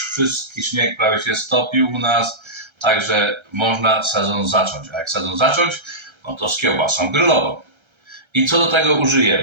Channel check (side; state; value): left; late; 1.3 ms